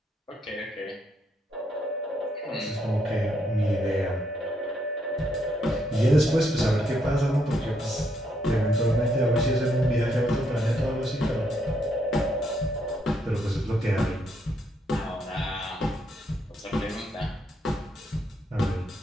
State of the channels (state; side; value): normal; both; correlation 0.75